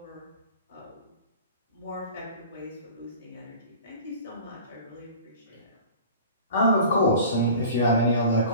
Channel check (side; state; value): both; inverted; correlation -0.41